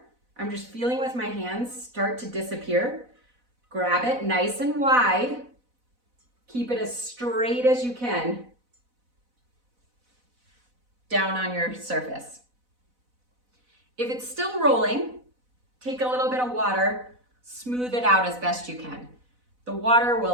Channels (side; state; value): left; late; 4.0 ms